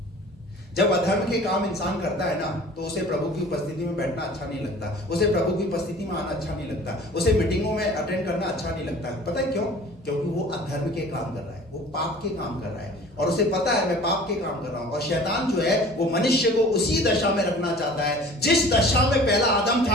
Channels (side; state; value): both; normal; correlation 0.45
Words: जब अधर्म के काम इंसान करता है ना, तो उसे प्रभु की उपस्थिति में बैठना अच्छा नहीं लगता, उसे प्रभु की उपस्थिति में आना अच्छा नहीं लगता, उसे मीटिंगों में अटेंड करना अच्छा नहीं लगता। पता है क्यों? क्योंकि वो अधर्म के काम कर रहा है, वो पाप के काम कर रहा है, और उसे पता है मैं पाप के काम कर रहा हूं। और शैतान जो है वो मनुष्य को उसी दशा में रखना चाहता है, जिस दशा में पहला आदम